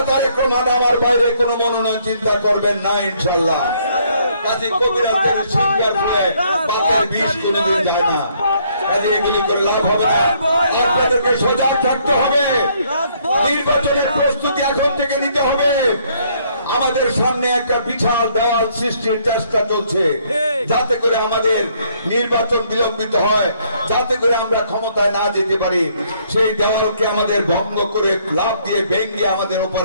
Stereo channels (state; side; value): inverted; both; correlation -0.67